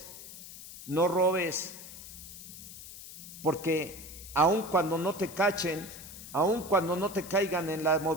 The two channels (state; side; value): noise; left; hiss, 14 dB below the sound